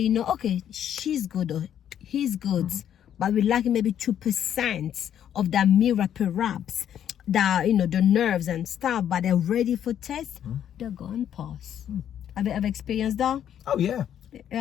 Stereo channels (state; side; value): quieter; right; 9.9 dB